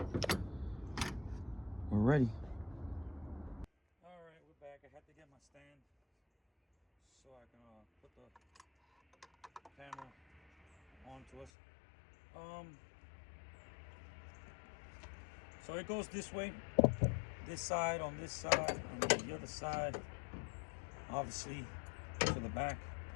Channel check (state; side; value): drops out; right; at 11.5 s